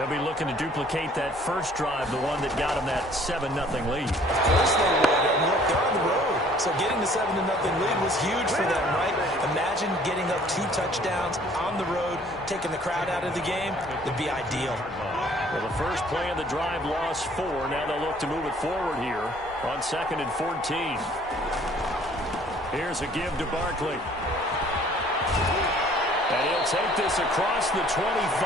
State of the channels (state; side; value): normal; both; correlation 0.56